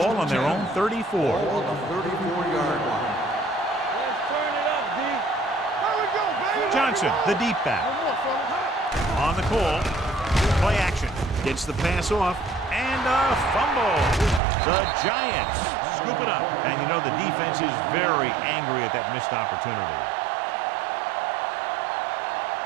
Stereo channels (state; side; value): drops out; left; at 14.4 s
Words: on their own 34. Ball on the 34-yard line. Let's turn it up, D. There we go, baby. Johnson, the deep back. One more, fella. On the call. Play action. Gets the pass off. And a fumble. The Giants scoop it up. And you know the defense is very angry at that missed opportunity.